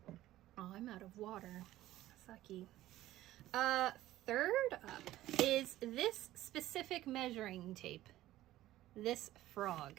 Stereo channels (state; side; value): quieter; left; 15.0 dB